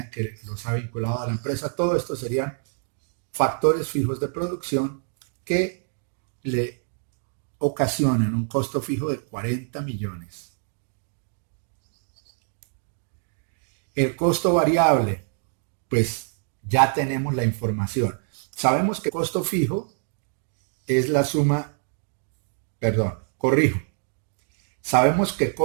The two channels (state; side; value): silent; left; 56 dB below the other